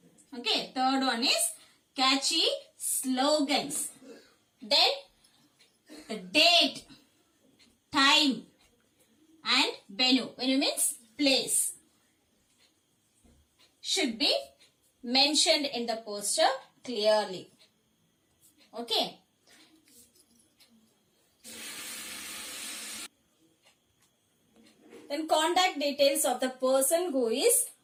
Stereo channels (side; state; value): both; identical; correlation 1.00